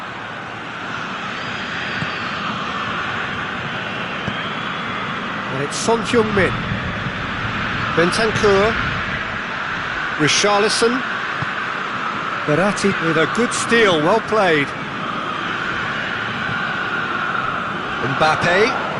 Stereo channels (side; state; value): both; identical; correlation 1.00